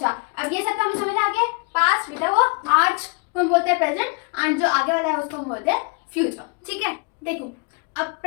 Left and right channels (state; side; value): quieter; right; 33.3 dB